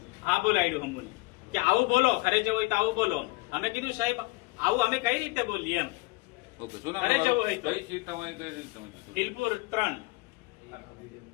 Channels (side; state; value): right; quieter; 24.7 dB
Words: હા બોલાડ્યું અમને કે આવું બોલો, ઘરે જવું હોય તો આવું બોલો. અમે કીધું સાહેબ આવું અમે કઈ રીતે બોલીએ એમ. ઓકે, શું નામ? ઘરે જવું હોય તો કઈ સીટ તમારી? કઈ રીત તમે? બિલપુર 3.